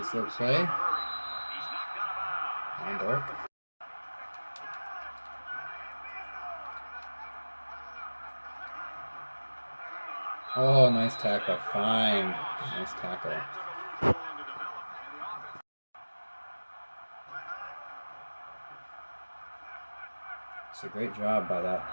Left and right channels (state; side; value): inverted; both; correlation -1.00